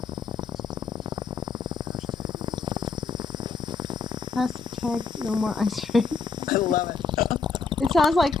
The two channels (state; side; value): quieter; right; 4.9 dB